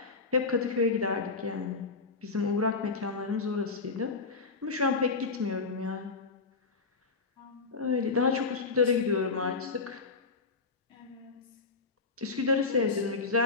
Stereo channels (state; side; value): quieter; right; 4.3 dB